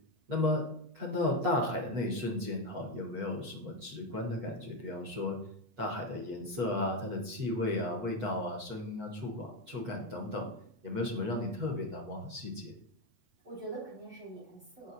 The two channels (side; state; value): left; late; 8.3 ms